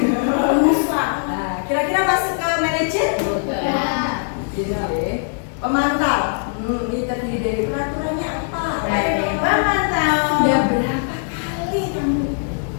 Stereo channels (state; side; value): silent; right; digital silence